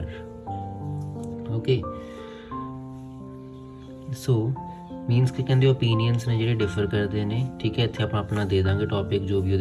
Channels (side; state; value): both; identical; correlation 1.00